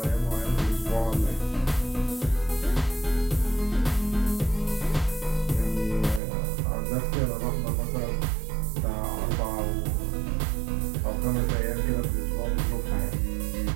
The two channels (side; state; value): left; drops out; at 6.2 s